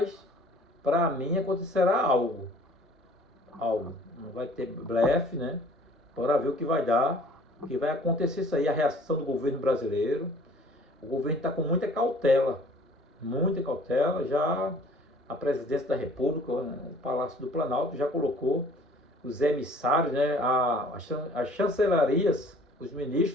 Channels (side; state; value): both; normal; correlation 0.52